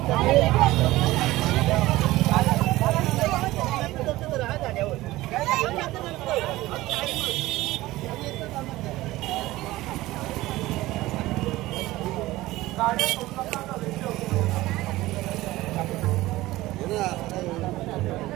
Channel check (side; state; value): left; quieter; 17.7 dB